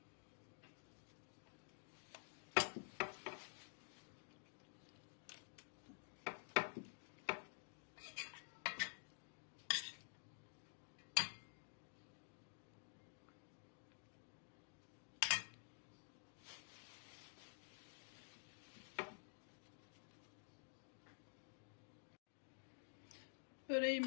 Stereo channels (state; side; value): silent; right; digital silence